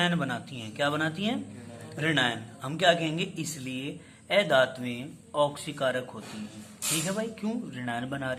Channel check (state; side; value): identical; both; correlation 1.00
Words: बनाती हैं। क्या बनाती हैं? ऋणायन। हम क्या कहेंगे? इसलिए अधात्में ऑक्सीकारक होती हैं। ठीक है भाई। क्यों? ऋणायन बना